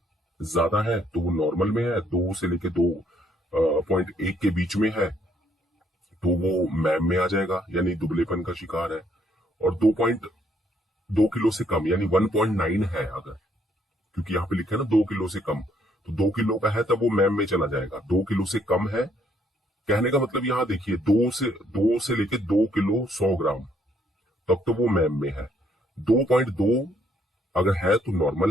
ज्यादा है तो वो नॉर्मल में है, 2 से लेके 2.1 के बीच में है तो वो मैम में आ जाएगा, यानी दुबलेपन का शिकार है। और 2.2 किलो से कम, यानी 1.9 है अगर, क्योंकि यहाँ पे लिखा है ना 2 किलो से कम, तो 2 किलो का है तब वो मैम में चला जाएगा। 2 किलो से कम है कहने का मतलब यहाँ देखिए, दो से लेके 2 किलो 100 ग्राम तब तो वो मैम में है। 2.2 अगर है तो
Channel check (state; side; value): normal; both; correlation 0.69